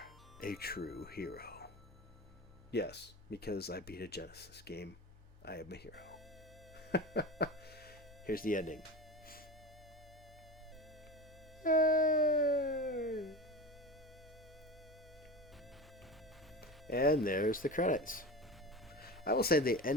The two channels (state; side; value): normal; both; correlation 0.28